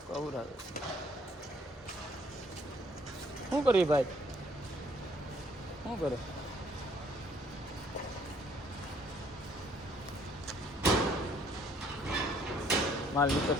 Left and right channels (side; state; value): both; normal; correlation 0.62